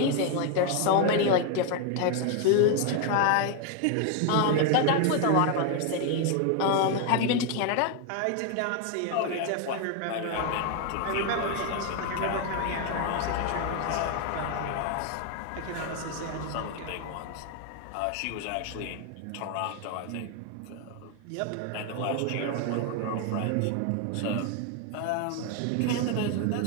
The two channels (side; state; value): both; different; correlation 0.01